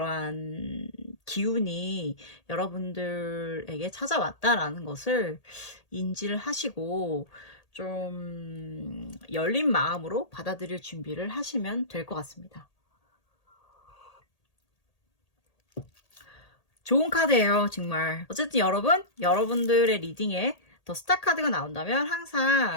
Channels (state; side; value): late; right; 1.8 ms